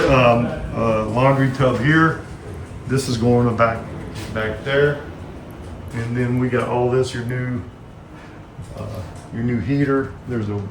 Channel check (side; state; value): both; identical; correlation 1.00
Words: a laundry tub here. This is going back there. And then we got all this, your new heater. There's a